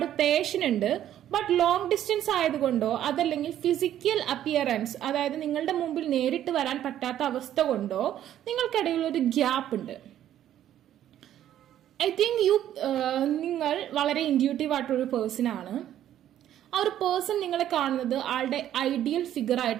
പേഷൻ ഉണ്ട്. ബട്ട് ലോങ് ഡിസ്റ്റൻസ് ആയതുകൊണ്ടോ അതല്ലെങ്കിൽ ഫിസിക്കൽ അപ്പിയറൻസ്, അതായത് നിങ്ങളുടെ മുമ്പിൽ നേരിട്ട് വരാൻ പറ്റാത്ത അവസ്ഥ കൊണ്ടോ നിങ്ങൾക്കിടയിൽ ഒരു ഗ്യാപ്പ് ഉണ്ട്. ഐ തിങ്ക് നിങ്ങൾ വളരെ ഇൻഡ്യൂട്ടീവ് ആയിട്ടൊരു പേഴ്സൺ ആണ്. ആ ഒരു പേഴ്സൺ നിങ്ങളെ കാണുന്നത് ആളുടെ ഐഡിയൽ ഫിഗർ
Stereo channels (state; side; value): quieter; left; 11.5 dB